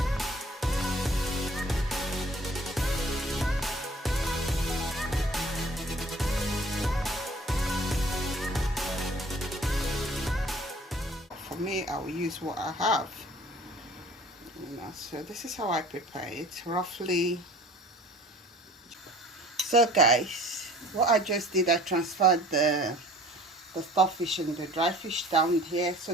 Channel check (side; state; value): both; normal; correlation 0.49